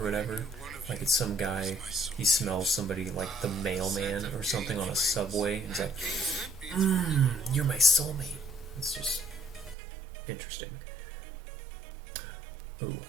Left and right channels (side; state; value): left; drops out; at 9.8 s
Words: whatever. Like it's some guy, he smells somebody like the mailman or something on a subway, and he's like, you're my soulmate. It's just interesting. Ooh,